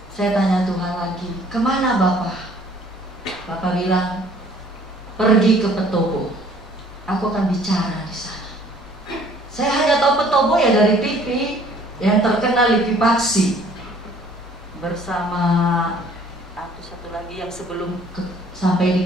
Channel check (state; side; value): normal; both; correlation 0.57